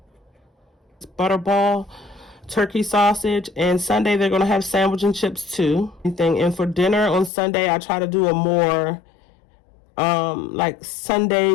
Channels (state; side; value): drops out; right; at 7.3 s